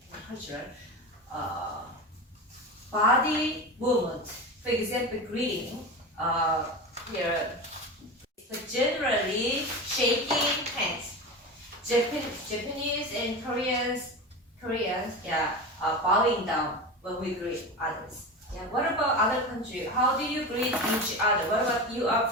cultural. Body movement, for example, greeting. Here, but generally shaking hands. Japanese and Koreans, yeah, bowing down when we greet others. Yeah. What about other countries? How do you greet each other? What about you are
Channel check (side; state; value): both; normal; correlation 0.25